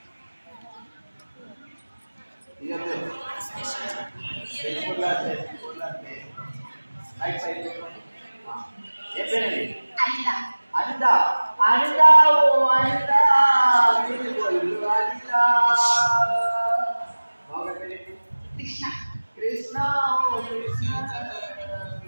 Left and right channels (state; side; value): inverted; both; correlation -1.00